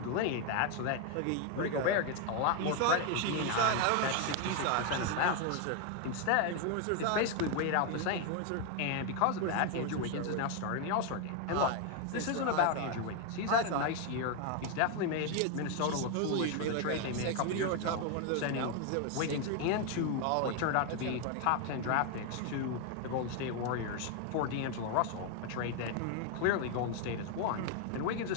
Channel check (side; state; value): both; different; correlation 0.01